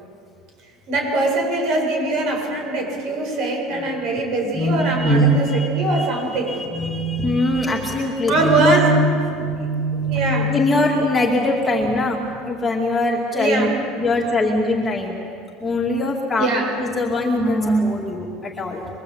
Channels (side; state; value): both; normal; correlation 0.51